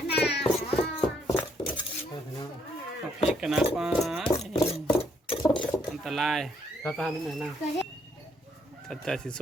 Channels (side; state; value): both; normal; correlation 0.71